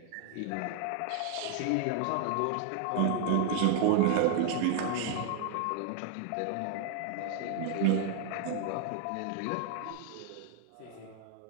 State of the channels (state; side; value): different; both; correlation 0.00